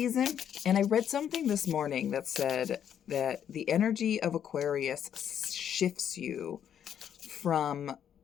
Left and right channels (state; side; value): quieter; right; 9.2 dB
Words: and I read something this morning that said that the energy of Aquarius shifts you from